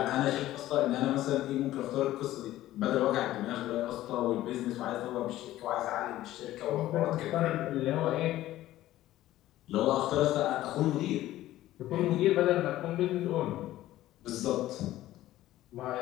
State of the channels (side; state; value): right; quieter; 14.8 dB